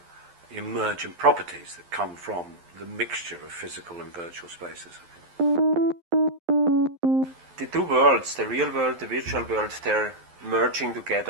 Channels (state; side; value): late; left; 11 ms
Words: emergent properties that come from the mixture of physical and virtual spaces. The two worlds, the real world, the virtual world, they're merging